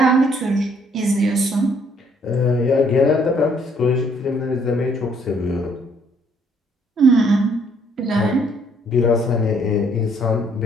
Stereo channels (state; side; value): normal; both; correlation 0.66